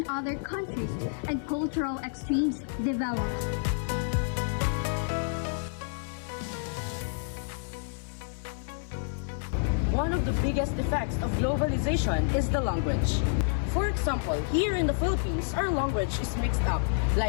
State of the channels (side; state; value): right; silent; 57 dB below the other